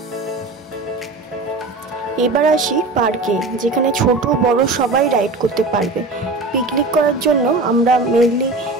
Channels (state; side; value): quieter; left; 3.4 dB